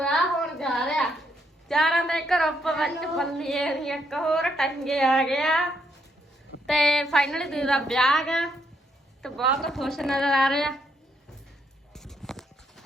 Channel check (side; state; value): both; normal; correlation 0.75